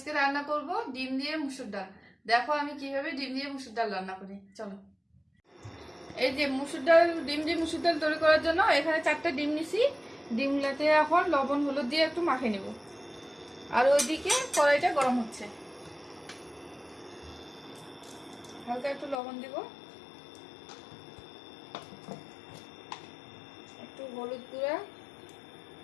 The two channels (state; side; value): drops out; right; at 19.2 s